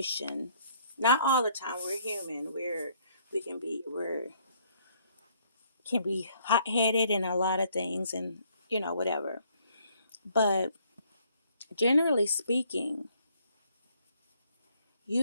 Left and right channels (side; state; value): both; inverted; correlation -0.66